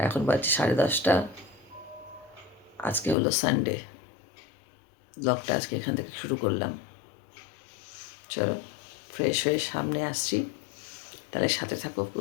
এখন বাজছে 10:30। আজকে হলো সানডে। ব্লগটা আজকে এখান থেকে শুরু করলাম। চলো ফ্রেশ হয়ে সামনে আসছি, তাহলে সাথে থাকো,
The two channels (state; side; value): drops out; right; at 3.2 s